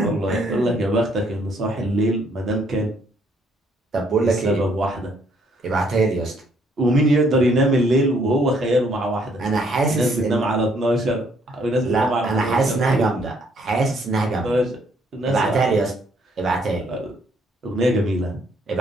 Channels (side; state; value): both; normal; correlation 0.67